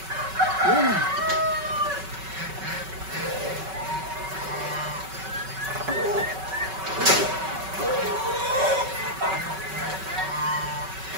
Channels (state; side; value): late; left; 5.3 ms